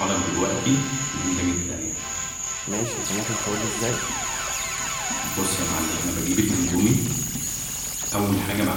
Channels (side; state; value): both; identical; correlation 1.00